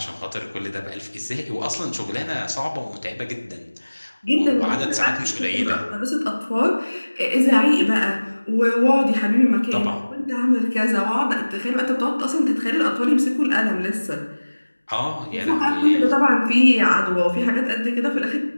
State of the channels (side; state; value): both; inverted; correlation -1.00